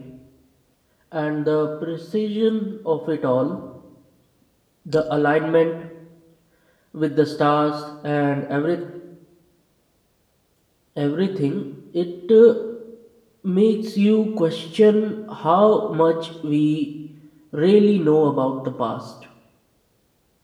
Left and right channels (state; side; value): identical; both; correlation 1.00